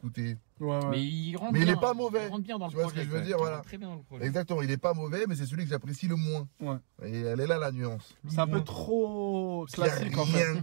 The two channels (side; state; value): left; silent; digital silence